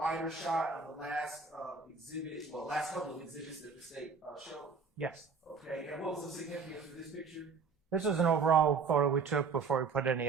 shot of the last exhibit, well, last couple of exhibits that the state showed? Yes. Okay, and what was the significance of this picture? This is an overall photo we took before we put any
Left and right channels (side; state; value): left; quieter; 5.1 dB